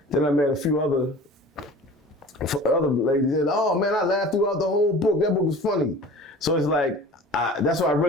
Then I met a few other ladies said, "Oh man, I laughed throughout the whole book. That book was funny." So it's like that's why I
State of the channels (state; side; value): normal; both; correlation 0.41